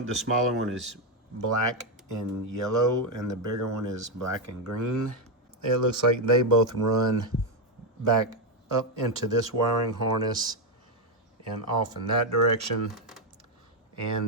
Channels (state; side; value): normal; both; correlation 0.04